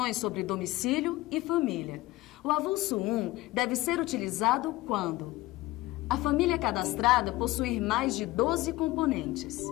sobre domicílio e família. O avulso 1 deve ser utilizado quando a família cadastrada possuir mais de 12 componentes.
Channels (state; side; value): quieter; right; 18.2 dB